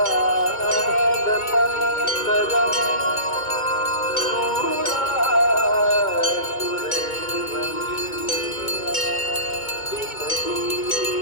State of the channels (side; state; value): right; late; 2.2 ms